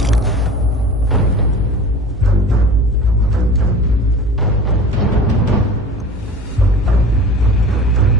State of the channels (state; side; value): normal; both; correlation 0.39